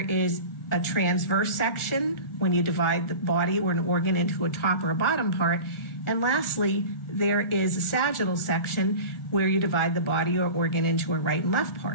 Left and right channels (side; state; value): right; late; 1.5 ms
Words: a transverse section, when you divide the body or an organ into a top or a bottom part. And lastly, there is a sagittal section where you divide the body or organ into a right and left